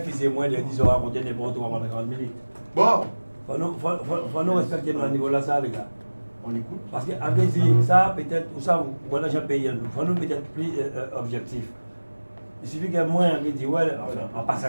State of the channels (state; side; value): inverted; both; correlation -1.00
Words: faisait moins de 10, on va raconter n'importe quoi pendant 40 minutes. Bon, Faut nous respecter nos niveaux là, ça, les gars. On écoute. Parce que, avec ça, peut-être, ou ça, voilà, j'ai payé, il faut nous peut-être plus objectif. Il suffit que moi, on dit, ouais, enfin, en